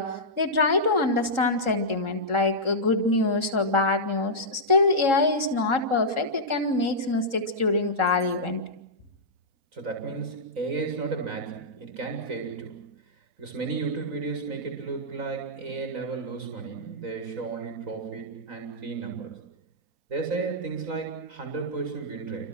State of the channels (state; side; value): late; left; 3.7 ms